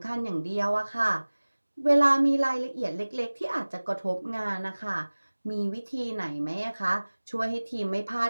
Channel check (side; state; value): both; inverted; correlation -1.00